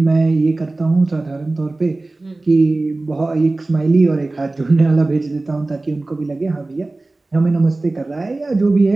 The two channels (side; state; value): left; quieter; 3.0 dB